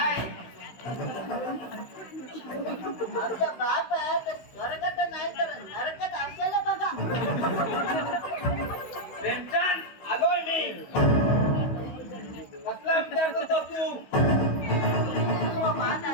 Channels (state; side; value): late; right; 16 ms